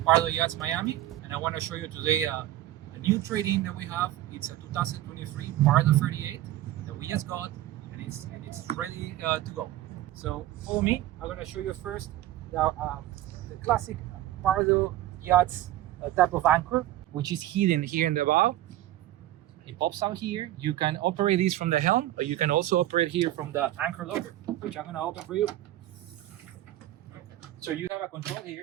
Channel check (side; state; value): left; quieter; 14.3 dB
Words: Pardo Yachts Miami, and I want to show you today a new trade-in that we have. It's a 2023 Pardo 38 that we just got, and it's ready to go. So follow me. I'm going to show you first the classic Pardo Yachts type of anchor, which is hidden here in the bow. It pops out here. You can operate this from the helm, or you can also operate here from the anchor locker, which I'm going to open for you. So you have a control